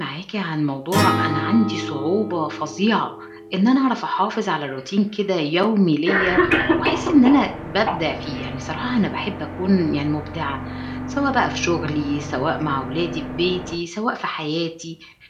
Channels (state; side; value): identical; both; correlation 1.00